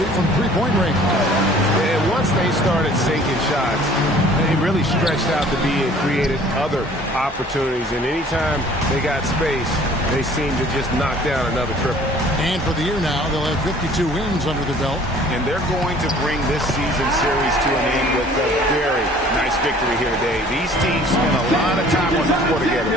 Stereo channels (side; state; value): both; normal; correlation 0.52